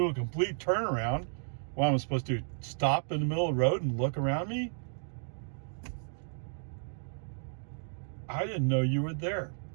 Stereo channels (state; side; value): silent; left; digital silence